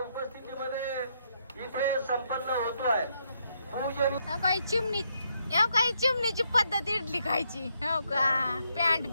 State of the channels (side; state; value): both; inverted; correlation -0.76